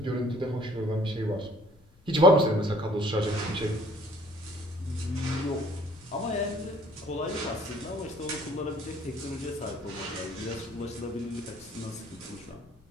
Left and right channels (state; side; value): noise; left; rumble, 28 dB below the sound